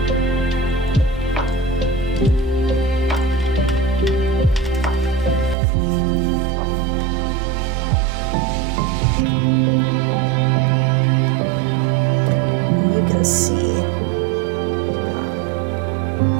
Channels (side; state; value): left; drops out; at 5.6 s